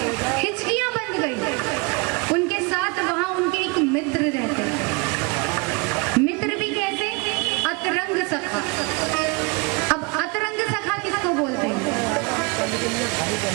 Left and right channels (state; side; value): quieter; left; 28.1 dB